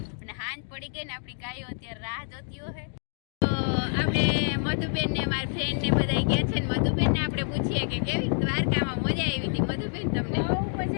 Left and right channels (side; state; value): right; silent; 56 dB below the other